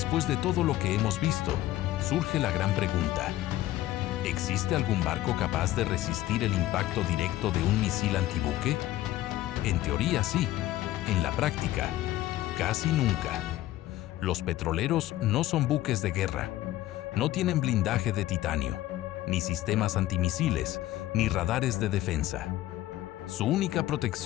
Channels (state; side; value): quieter; right; 15.1 dB